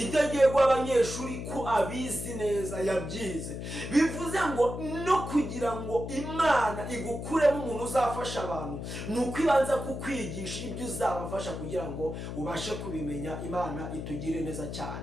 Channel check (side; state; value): left; noise; hum, 7 dB below the sound